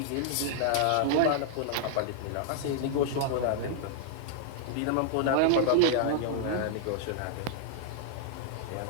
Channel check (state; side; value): different; both; correlation -0.01